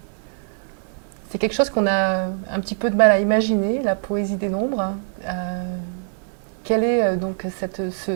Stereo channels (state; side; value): silent; left; digital silence